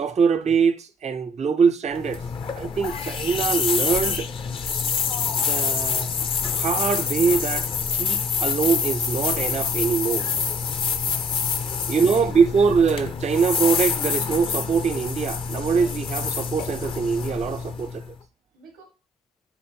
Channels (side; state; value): both; normal; correlation 0.61